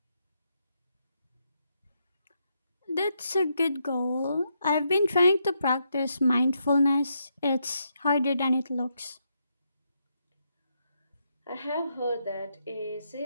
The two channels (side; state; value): both; inverted; correlation -0.79